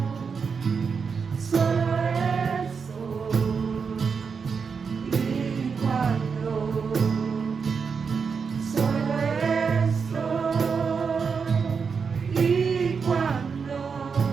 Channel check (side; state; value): left; quieter; 5.7 dB